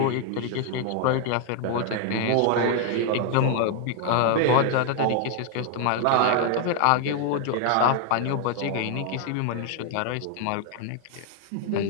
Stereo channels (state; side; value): different; both; correlation 0.00